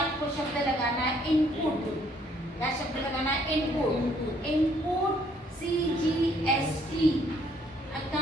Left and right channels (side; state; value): both; normal; correlation 0.65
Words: शब्द लगाना है इनपुट। क्या शब्द लगाना है, input. Input CGST